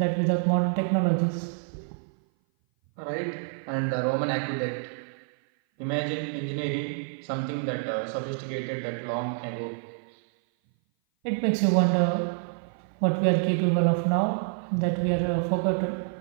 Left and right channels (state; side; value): silent; left; 57 dB below the other